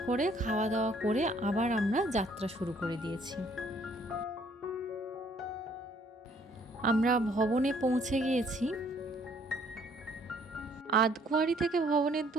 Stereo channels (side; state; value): both; normal; correlation 0.62